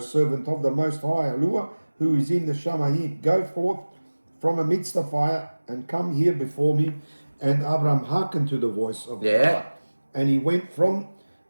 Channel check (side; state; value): both; inverted; correlation -1.00